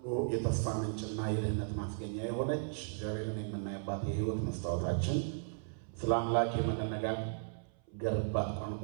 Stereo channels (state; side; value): silent; left; 54 dB below the other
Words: የተስፋ ምንጭና የድህነት ማስገኛ የሆነች እግዚአብሔርን የምናይባት የሕይወት መስታወታችን ስለ አምላክ የምንነጋገርባት